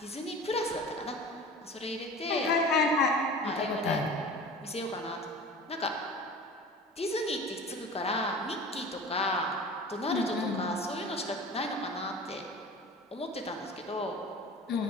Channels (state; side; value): normal; both; correlation 0.38